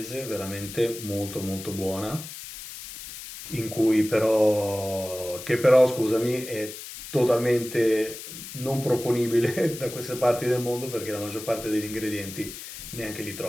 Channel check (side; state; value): left; noise; hiss, 11 dB below the sound